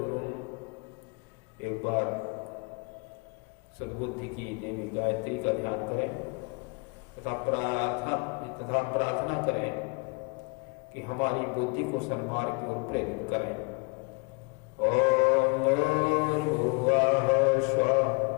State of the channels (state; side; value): quieter; right; 31.4 dB